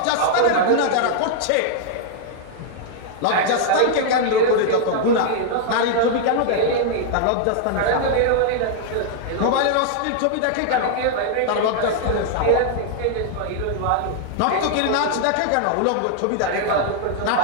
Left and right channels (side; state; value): both; different; correlation -0.01